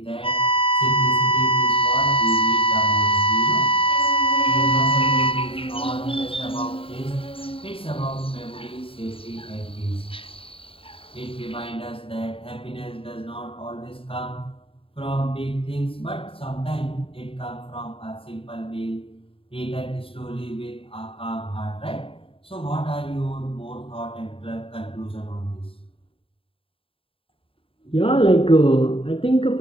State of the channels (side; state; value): right; late; 0.27 ms